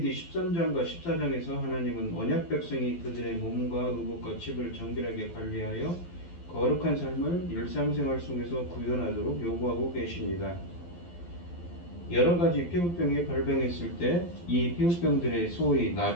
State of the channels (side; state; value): right; late; 12 ms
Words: 13장과 14장에서 하나님은 언약 백성이 그들의 몸과 의복과 집을 정결하게 관리하여 거룩한 삶을 일상생활 속에서 구현하도록 요구하고 계십니다. 여러 가지 피부병이 발병했을 때 이 피부병들의 소위